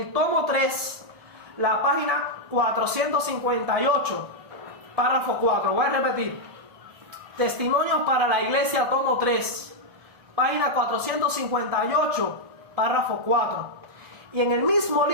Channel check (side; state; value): left; late; 1.7 ms